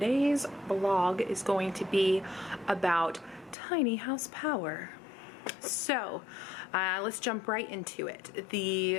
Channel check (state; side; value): drops out; right; at 3.6 s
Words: vlog is going to be about tiny house power. So let's jump right into it.